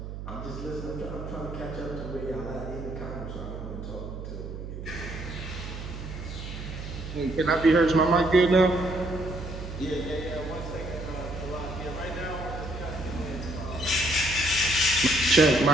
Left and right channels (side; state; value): right; noise; hum, 9 dB below the sound